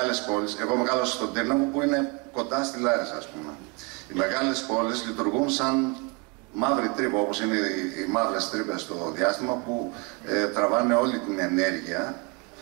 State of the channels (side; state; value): left; quieter; 30.1 dB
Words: πόλεις. Εγώ μεγάλωσα στον Τύρναβο που είναι κοντά στη Λάρισα, ας πούμε. Οι μεγάλες πόλεις λειτουργούν σαν μαύρη τρύπα, όπως είναι οι μαύρες τρύπες στο διάστημα, που τραβάνε όλη την ενέργεια.